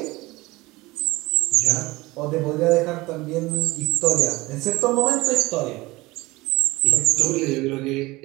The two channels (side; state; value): left; quieter; 20.8 dB